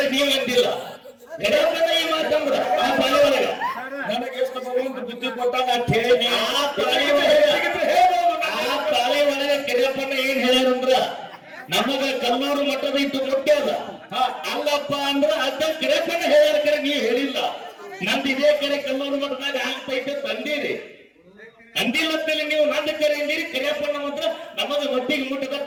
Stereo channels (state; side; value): identical; both; correlation 1.00